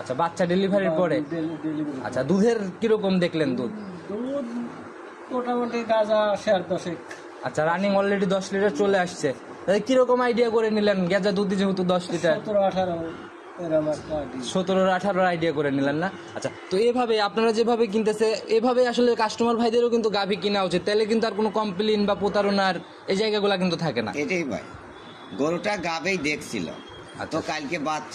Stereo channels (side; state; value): both; identical; correlation 1.00